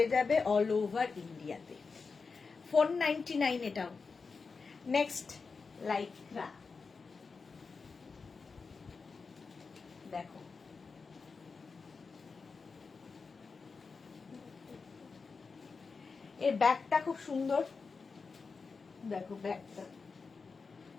যাবে অল ওভার ইন্ডিয়াতে। 499 এটাও। নেক্সট লাইক্রা দেখো, এর ব্যাগটা খুব সুন্দর, দেখো ব্যাগটা,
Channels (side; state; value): right; quieter; 4.7 dB